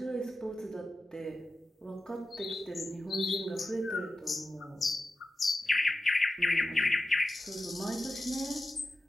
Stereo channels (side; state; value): both; normal; correlation 0.92